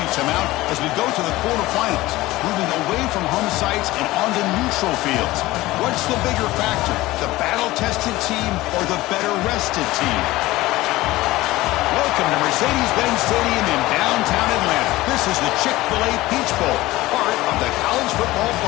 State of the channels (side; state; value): right; quieter; 18.2 dB